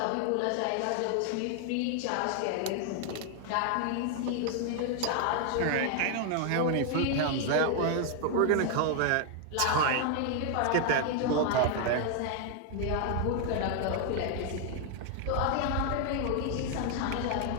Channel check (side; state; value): both; different; correlation 0.00